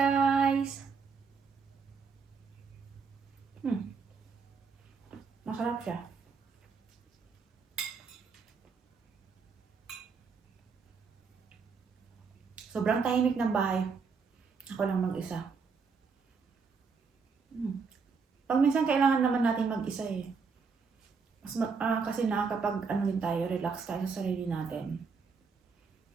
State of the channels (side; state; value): left; quieter; 5.3 dB